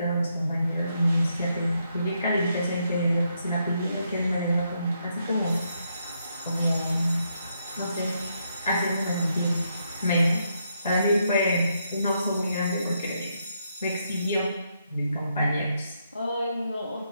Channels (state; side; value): inverted; both; correlation -0.78